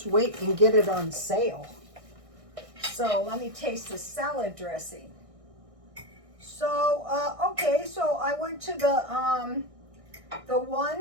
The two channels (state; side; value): late; left; 1.6 ms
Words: wait and get it on sale. So let me taste the salad dressing. So, okay, so I went to the